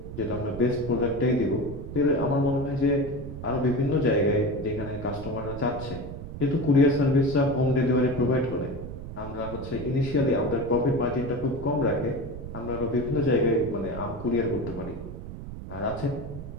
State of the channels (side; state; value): right; noise; rumble, 10 dB below the sound